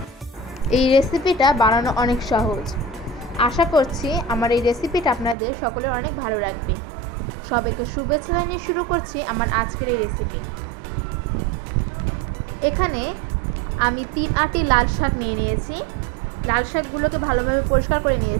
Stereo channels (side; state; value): left; drops out; at 5.4 s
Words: এই রেসিপিটা বানানো অনেক সহজ। আশা করছি আমার এই রেসিপিটা আপনাদের সকলের অনেক ভালো লাগবে। সবাইকে শুভেচ্ছা জানিয়ে শুরু করছি আমার আজকের এই রেসিপি। এখানে আমি 3 আটি লাল শাক নিয়ে নিয়েছি। লাল শাকগুলোকে ভালোভাবে পরিষ্কার করে